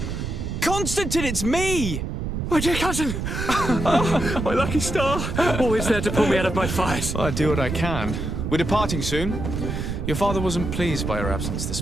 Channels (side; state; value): right; noise; rumble, 3 dB below the sound